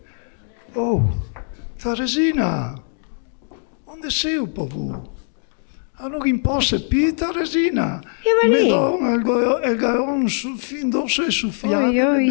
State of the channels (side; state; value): right; silent; 58 dB below the other